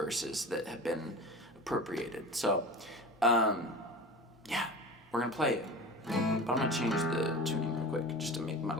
that have been appropriated. So, yeah, we're going to play it. But I'm going to change the tuning real quick just to make my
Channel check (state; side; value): normal; both; correlation 0.33